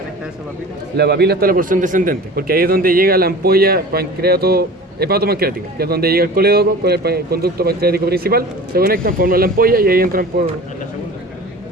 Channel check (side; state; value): both; normal; correlation 0.39